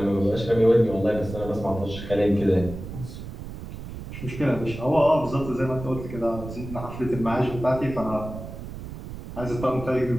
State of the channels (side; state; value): right; noise; rumble, 10 dB below the sound